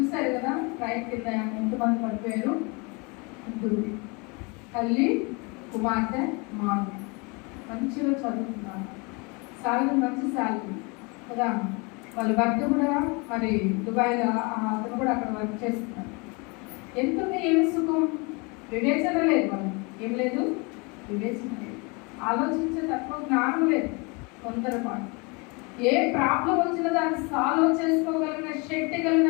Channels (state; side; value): quieter; right; 29.6 dB